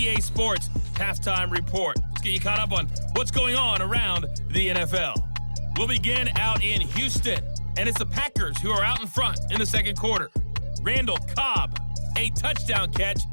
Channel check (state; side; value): inverted; both; correlation -1.00